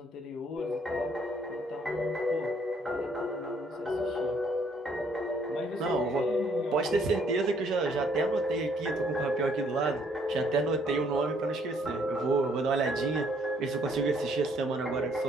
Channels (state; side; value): normal; both; correlation 0.66